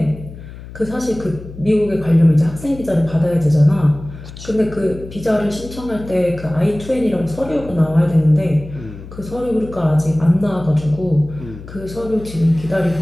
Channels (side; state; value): left; noise; hum, 15 dB below the sound